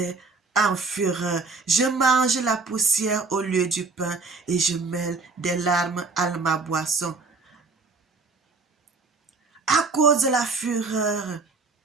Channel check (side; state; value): left; quieter; 4.2 dB